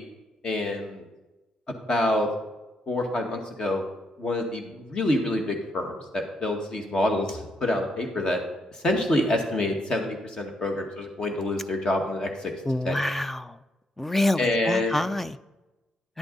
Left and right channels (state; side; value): normal; both; correlation 0.76